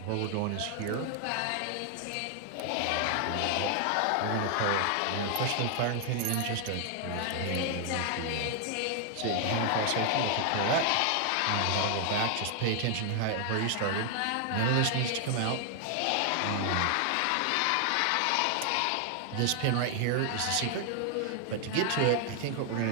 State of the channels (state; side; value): different; both; correlation 0.00